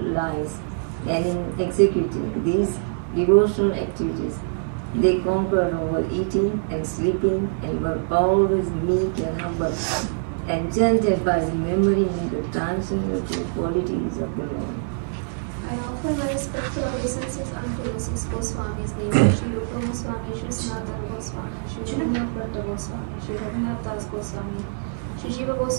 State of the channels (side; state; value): left; silent; digital silence